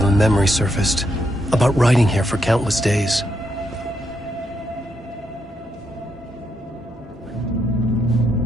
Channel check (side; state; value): both; normal; correlation 0.79